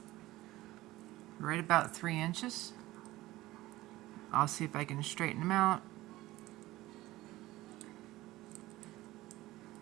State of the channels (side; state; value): left; quieter; 17.5 dB